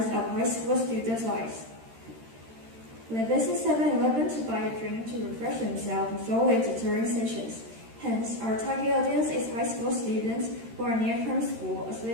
high school students' lives. They visit 7-Eleven to buy a drink to refresh themselves before their tutoring sessions. Hence, our target audience is high school students who are near from school, as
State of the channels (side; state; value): left; late; 13 ms